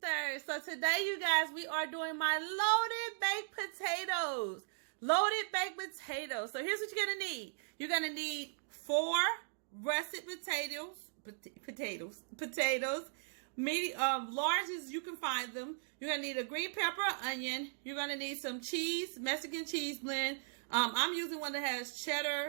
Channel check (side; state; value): left; silent; digital silence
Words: So today, you guys, we are doing my loaded baked potatoes. Loaded baked potatoes. So here's what you're gonna need. You're gonna need 4 russet potatoes, medium, large as you can find them. You're gonna need a green pepper, onion. You're gonna need some cheese, Mexican cheese blend. I'm using one that has